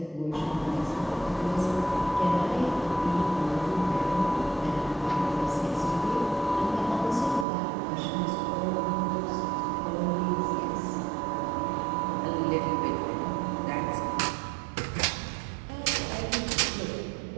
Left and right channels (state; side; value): drops out; left; at 7.5 s